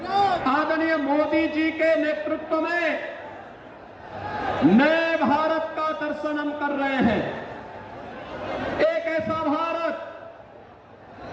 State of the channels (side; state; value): both; identical; correlation 1.00